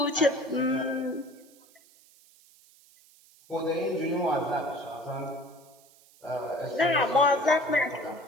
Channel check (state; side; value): noise; right; hiss, 27 dB below the sound